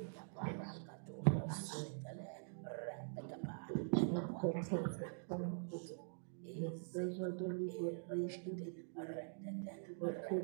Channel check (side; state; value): left; silent; digital silence